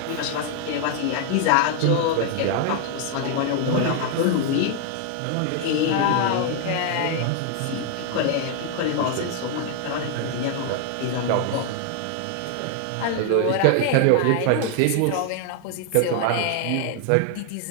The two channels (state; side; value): different; both; correlation 0.00